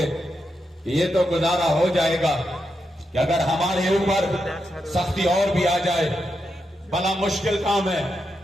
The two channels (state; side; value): normal; both; correlation 0.85